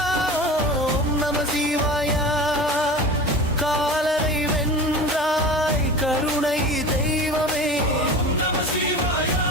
ஓம் நம சிவாயா காலனை வென்றாய் கருணை தெய்வமே ஓம் நம சிவாயா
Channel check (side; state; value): both; normal; correlation 0.34